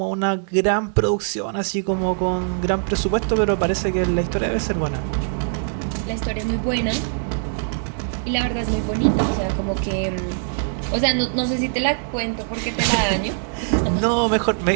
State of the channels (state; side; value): silent; left; digital silence